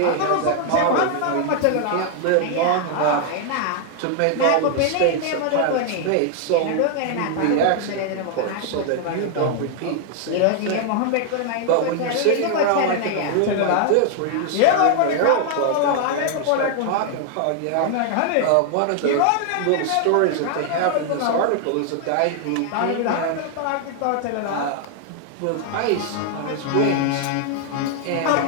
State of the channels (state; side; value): different; both; correlation 0.00